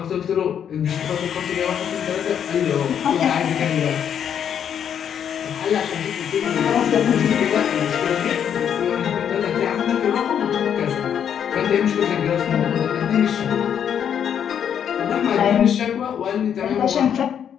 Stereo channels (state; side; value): quieter; right; 8.6 dB